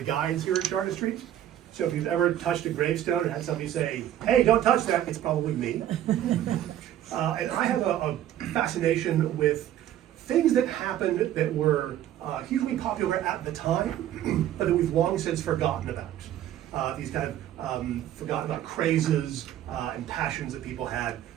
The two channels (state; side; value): quieter; left; 11.9 dB